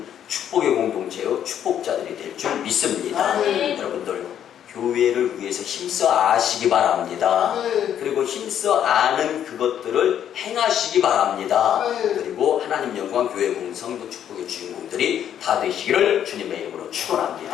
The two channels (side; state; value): right; quieter; 9.8 dB